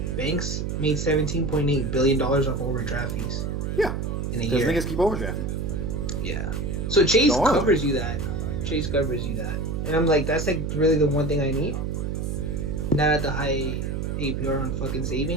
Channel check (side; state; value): right; noise; hum, 2 dB below the sound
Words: banks made $17.8 billion off overdraft fees. Yeah, in a year. Because niggas keep overdrafting. Yeah. So Chase covers you that. Chase covers you that, and I'm like, that's like really the one thing I need. Not at the high APR on fucking